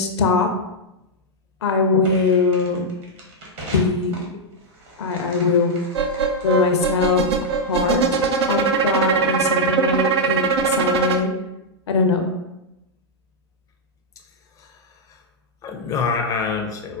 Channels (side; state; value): both; normal; correlation -0.03